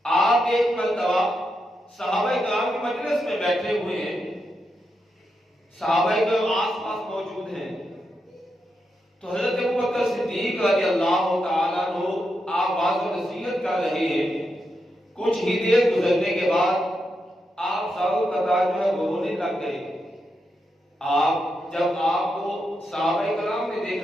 آپ ایک مرتبہ صحابہ کرام کی مجلس میں بیٹھے ہوئے ہیں، صحابہ کرام آس پاس موجود ہیں، تو حضرت ابو بکر صدیق رضی اللہ تعالیٰ عنہ آپ واعظ و نصیحت کر رہے ہیں۔ کچھ ہی دیر گزرنے کے بعد آپ ساروں قطار جو ہے رونے لگ گئے۔ جب آپ کو صحابہ کرام نے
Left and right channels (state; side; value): normal; both; correlation 0.85